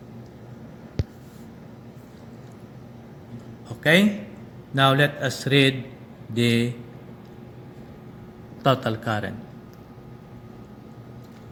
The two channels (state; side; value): identical; both; correlation 1.00